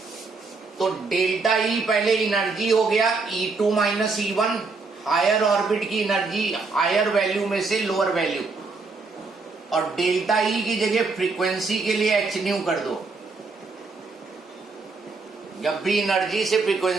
तो डेल्टा ई पहले एनर्जी हो गया E2 minus E1, higher orbit की एनर्जी हायर वैल्यू में से लोअर वैल्यू, और डेल्टा ई की जगह फ्रीक्वेंसी के लिए एच न्यू कर दो. जब भी एनर्जी से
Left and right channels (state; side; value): quieter; left; 4.1 dB